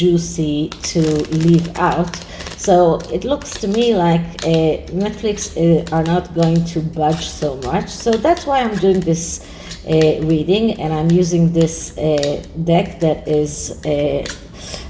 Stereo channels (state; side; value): identical; both; correlation 1.00